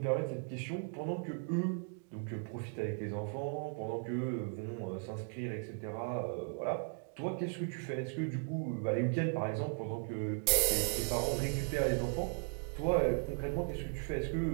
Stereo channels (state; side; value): silent; left; 53 dB below the other